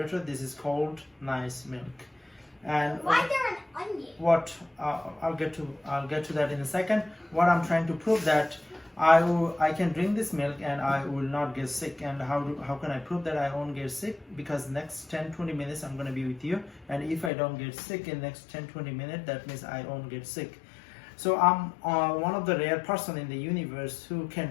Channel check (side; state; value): right; drops out; at 17.3 s